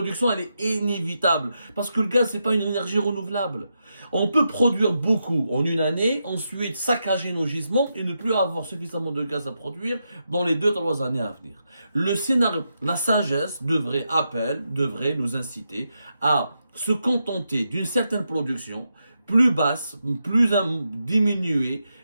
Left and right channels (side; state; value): both; inverted; correlation -0.85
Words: elle est inévitable. Parce que le gaz, c'est pas une énergie renouvelable. On peut produire beaucoup en une année, ensuite saccager nos gisements et ne plus avoir suffisamment de gaz à produire dans les 2-3 années à venir. Le scénario, la sagesse devrait nous inciter à se contenter d'une certaine production plus basse, plus diminuée,